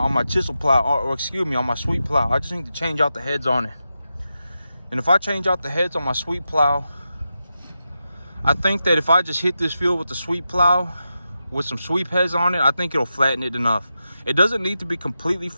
chisel plow, or excuse me, on my sweep plow. I just need to change out the heads on it. And if I change out the heads on my sweep plow, I think that if I just hit this field with the sweep plow with some sweep heads on it, I think it'll flatten it enough. It doesn't need to be completely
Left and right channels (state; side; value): inverted; both; correlation -0.89